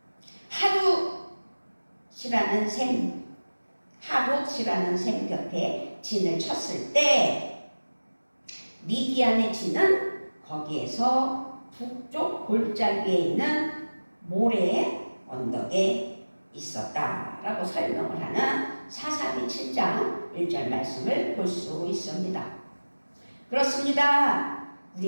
하룻이라는 샘 곁에 진을 쳤을 때 미디안의 진은 거기에서 북쪽 골짜기에 있는 모래 언덕에 있었다라고 설명을 하는 사사기 7장 1절 말씀을 볼 수 있습니다. 그렇습니다.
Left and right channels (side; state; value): both; inverted; correlation -1.00